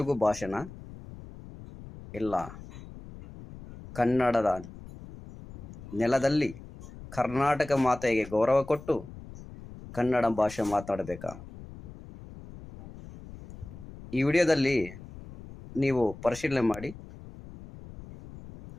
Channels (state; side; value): noise; left; rumble, 16 dB below the sound